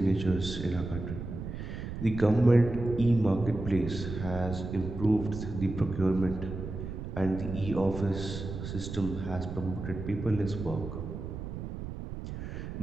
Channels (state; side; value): noise; right; rumble, 7 dB below the sound